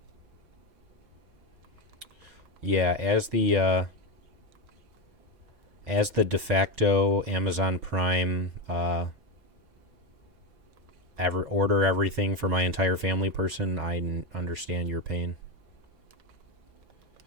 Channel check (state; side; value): late; left; 5.8 ms